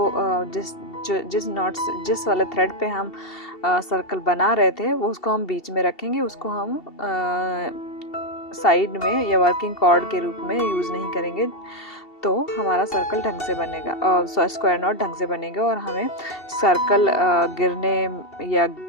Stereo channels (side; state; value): right; late; 2.7 ms